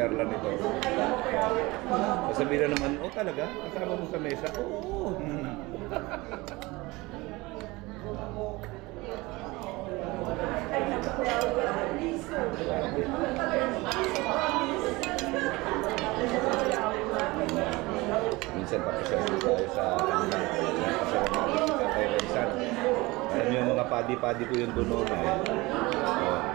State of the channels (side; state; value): left; quieter; 22.2 dB